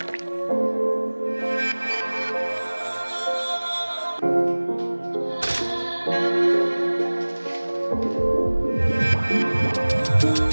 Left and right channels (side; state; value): both; inverted; correlation -1.00